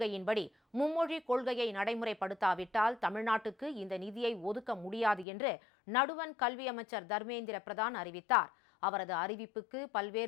மும்மொழி கொள்கையை நடைமுறைப்படுத்தாவிட்டால் தமிழ்நாட்டுக்கு இந்த நிதியை ஒதுக்க முடியாது என்று நடுவண் கல்வி அமைச்சர் தர்மேந்திர பிரதான் அறிவித்தார். அவரது அறிவிப்புக்கு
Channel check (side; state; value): right; drops out; at 5.2 s